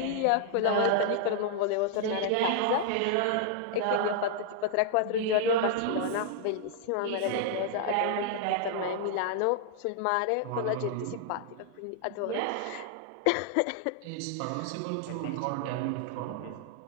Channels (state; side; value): different; both; correlation -0.01